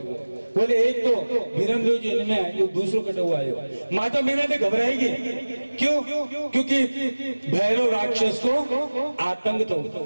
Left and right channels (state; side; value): inverted; both; correlation -1.00